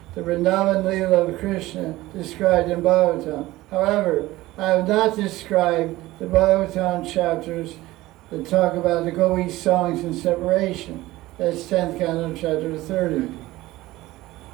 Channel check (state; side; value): quieter; left; 17.8 dB